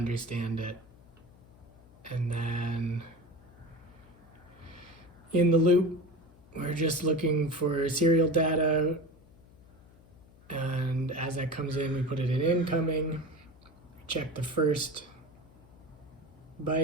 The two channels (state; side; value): noise; left; hum, 25 dB below the sound